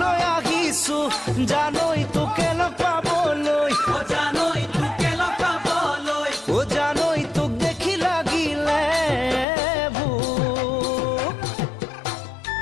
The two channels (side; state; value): right; drops out; at 9.5 s